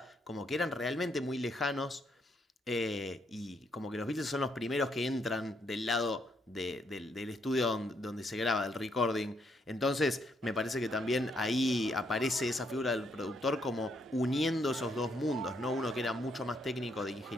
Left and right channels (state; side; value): normal; both; correlation 0.74